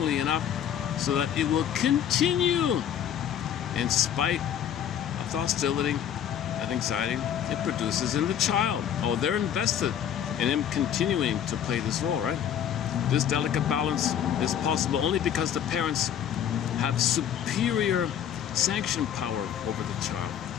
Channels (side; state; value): right; quieter; 9.4 dB